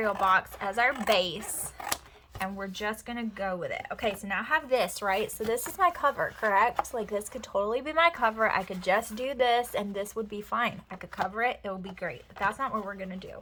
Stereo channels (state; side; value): identical; both; correlation 1.00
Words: box as our base, and we're just going to go with it. Okay, so now I have this, right? So this is my cover, correct? Like, this could totally be my cover. I could just do this, and this would be fine. I could cover it. It would be great. But that's not what we're going to do.